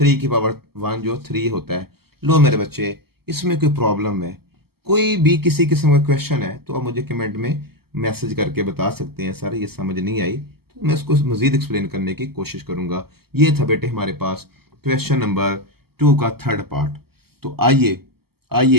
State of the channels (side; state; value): left; late; 0.95 ms